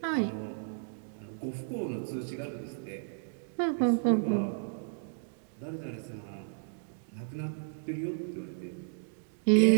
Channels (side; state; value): left; silent; digital silence